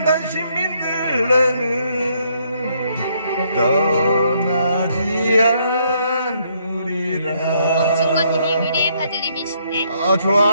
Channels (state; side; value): inverted; both; correlation -0.71